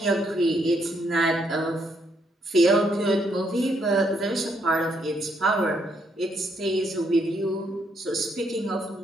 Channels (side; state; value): both; normal; correlation 0.74